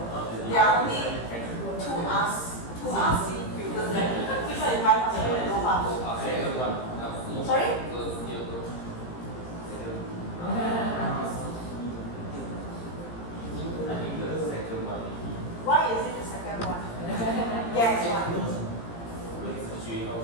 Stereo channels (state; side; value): late; right; 17 ms